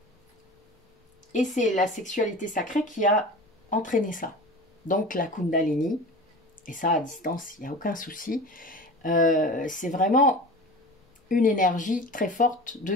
Et c'est la sexualité sacrée qui a entraîné ça. Donc, la Kundalini, et ça à distance, il n'y a aucun souci. C'est vraiment une énergie très forte de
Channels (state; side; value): normal; both; correlation 0.35